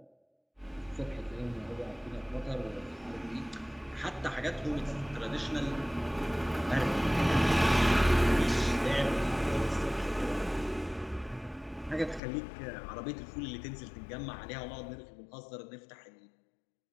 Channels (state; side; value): drops out; right; at 12.2 s